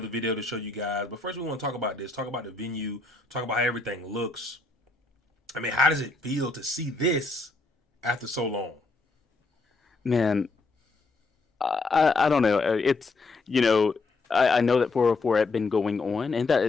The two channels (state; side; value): quieter; right; 3.5 dB